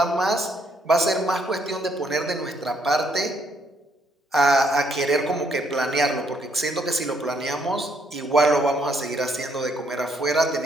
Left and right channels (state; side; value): normal; both; correlation 0.70